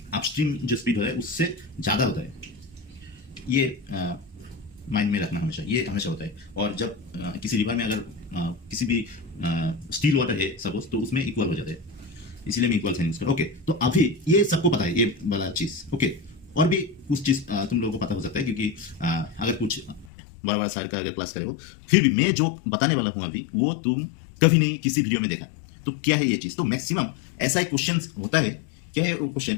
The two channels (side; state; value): right; drops out; at 20.1 s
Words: अपस्ट्रीम जो स्पीड होता है उससे ज़्यादा होता है। ये माइंड में रखना हमेशा, ये हमेशा होता है। और जब किसी रिवर में अगर किसी भी स्टील वाटर है सपोज, तो उसमें इक्वल हो जाता है, इसलिए मैं इक्वल साइन यूज करूँ। ओके, तो अभी ये सबको पता है ये वाला चीज। ओके, और भी कुछ चीज तुम लोगों को पता हो सकता है क्योंकि अगर कुछ बड़ा बड़ा सार का अगर क्लास करे हो, फिर भी मैं जो बताने वाला हूँ अभी वो तुम कभी नहीं किसी वीडियो में देखा। तो क्या है ये चीज? तो मैक्सिमम ऐसा एक क्वेश्चन होता है। क्या है वो क्वेश्चन